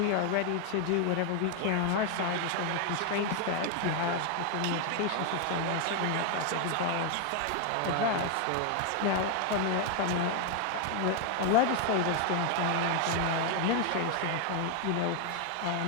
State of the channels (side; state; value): both; different; correlation 0.00